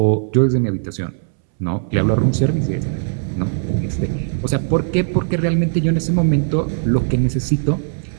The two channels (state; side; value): silent; left; 67 dB below the other